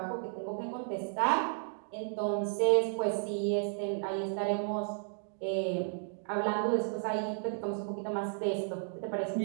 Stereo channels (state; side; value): silent; left; digital silence